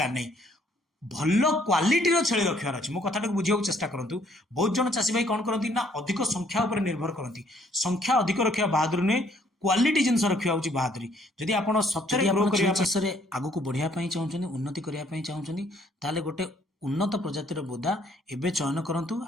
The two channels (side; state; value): both; normal; correlation 0.64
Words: नहीं, भल क्वालिटीर छेली रखार अच्छे। मो कथा बुझे चेष्टा करूँ। बहुत जन चाषी भाई कौन करती ना अधिक संख्या उपर निर्भर करती। संख्या अधिक रखा बहादुरी नुहे, क्वालिटी जिनस रखा हूँ बहादुरी। जदि आप सचरे ग्रो करने आगु को बढ़िया चाहते उन्नति करने चाहते ताले गोटे उन्नत प्रजातिर बोदा एबे चयन करंतु,